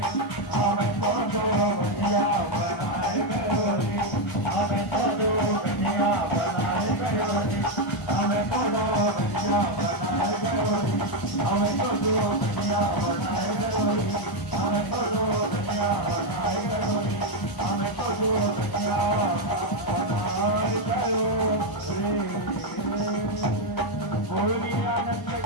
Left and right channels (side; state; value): right; late; 1.0 ms